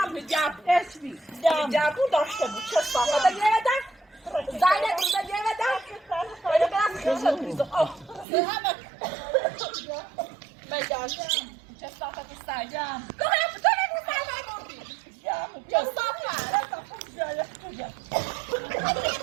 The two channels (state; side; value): drops out; left; at 8.2 s